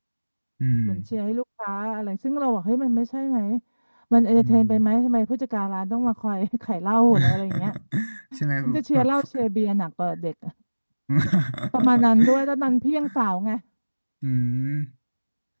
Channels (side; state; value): both; inverted; correlation -1.00